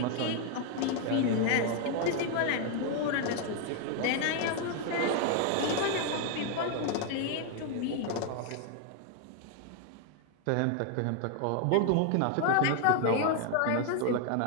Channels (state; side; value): different; both; correlation 0.00